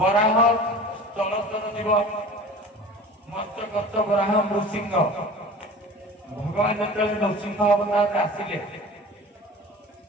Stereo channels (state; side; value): normal; both; correlation 0.39